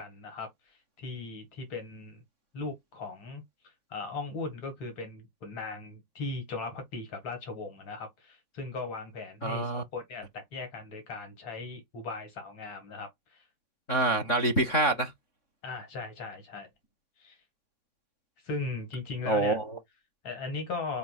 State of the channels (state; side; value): late; right; 3.6 ms